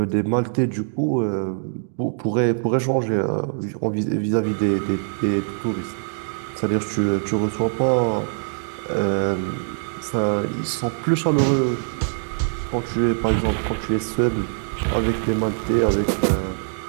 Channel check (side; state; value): left; silent; digital silence